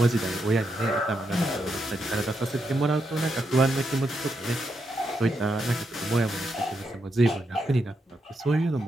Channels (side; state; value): both; normal; correlation 0.82